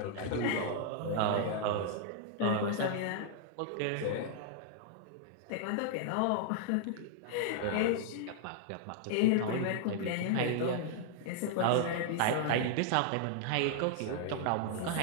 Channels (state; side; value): different; both; correlation -0.01